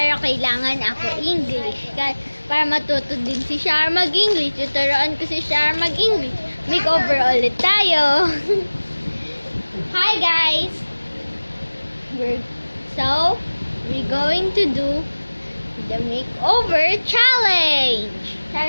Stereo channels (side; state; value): both; inverted; correlation -1.00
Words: kailangan ako English para matuto din si Shar mag-English. Tuturuan ko si Shar mag-English. Makeover ulit tayo. Hi guys! We're going to do the makeover challenge.